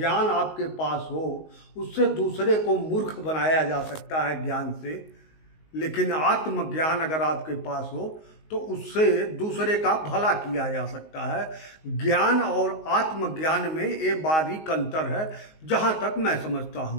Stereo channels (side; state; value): right; late; 19 ms